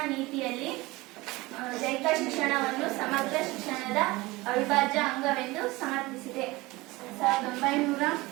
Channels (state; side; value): quieter; left; 21.3 dB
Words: ನೀತಿಯಲ್ಲಿ ದೈಹಿಕ ಶಿಕ್ಷಣವನ್ನು ಸಮಗ್ರ ಶಿಕ್ಷಣದ ಅವಿಭಾಜ್ಯ ಅಂಗವೆಂದು ಸಮರ್ಥಿಸಿದೆ.